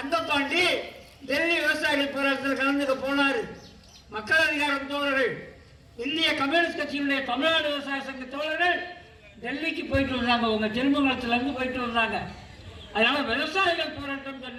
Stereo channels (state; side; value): identical; both; correlation 1.00